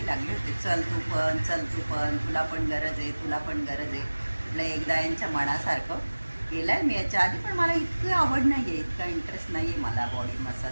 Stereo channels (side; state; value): both; inverted; correlation -1.00